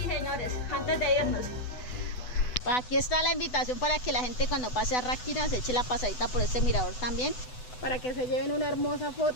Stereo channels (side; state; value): right; late; 8.0 ms